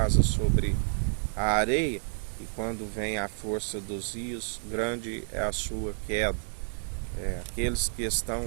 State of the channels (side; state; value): left; silent; 58 dB below the other